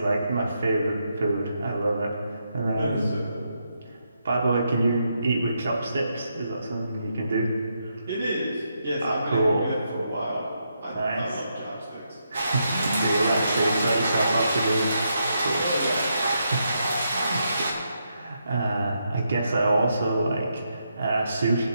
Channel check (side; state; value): both; inverted; correlation -0.81